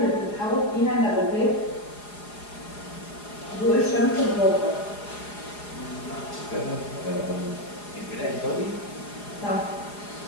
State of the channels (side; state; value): right; late; 4.8 ms